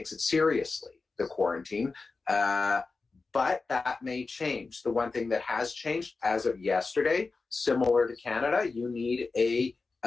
it seriously, the quarantine. But that may change. The one thing that has changed as of yesterday, similar to Canada, you need a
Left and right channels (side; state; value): right; quieter; 4.0 dB